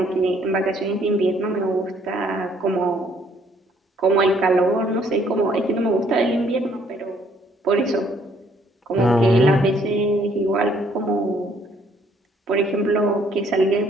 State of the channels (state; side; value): normal; both; correlation 0.65